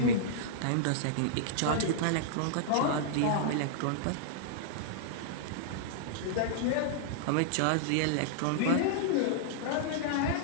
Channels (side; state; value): both; different; correlation -0.02